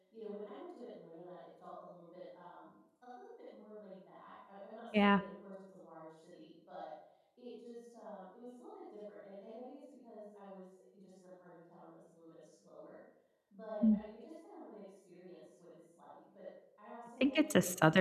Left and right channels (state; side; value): identical; both; correlation 1.00